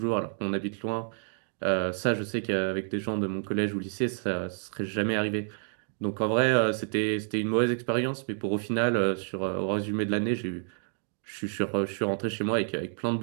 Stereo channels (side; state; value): left; silent; digital silence